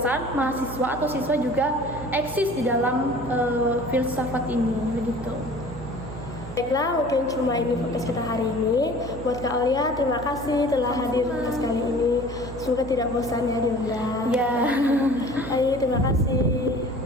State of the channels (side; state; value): right; noise; hum, 11 dB below the sound